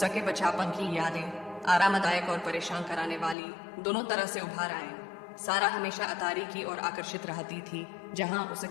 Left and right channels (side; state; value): right; drops out; at 3.4 s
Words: बचपन की यादें आरामदायक और परेशान कराने वाली दोनों तरह से उभार आए। सारा हमेशा अतारी की ओर आकर्षित रहती थी, जहां